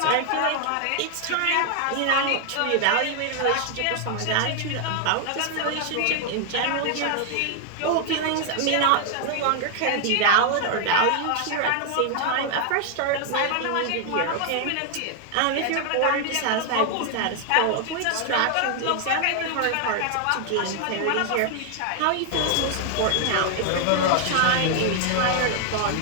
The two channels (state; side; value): different; both; correlation 0.00